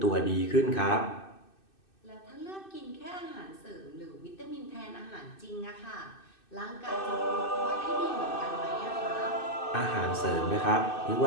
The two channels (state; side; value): late; right; 2.6 ms